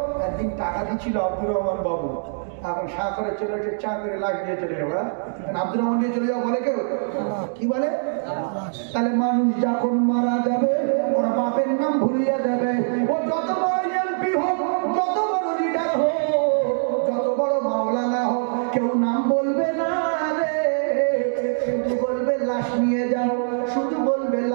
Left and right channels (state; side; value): silent; left; digital silence